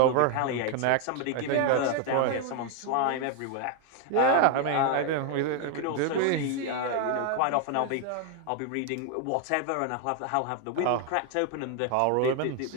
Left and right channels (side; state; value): both; different; correlation 0.01